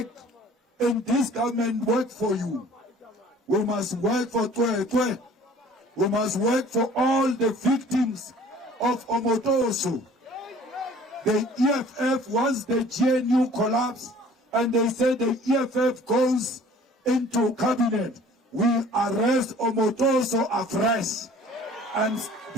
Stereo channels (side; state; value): both; normal; correlation 0.50